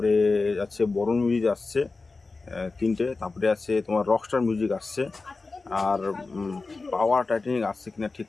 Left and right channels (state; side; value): quieter; right; 3.8 dB